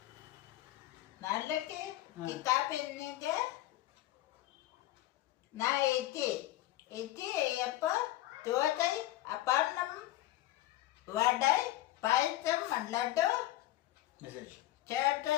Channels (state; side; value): quieter; right; 15.6 dB